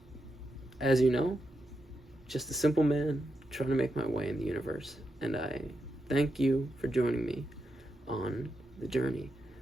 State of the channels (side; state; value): both; normal; correlation 0.86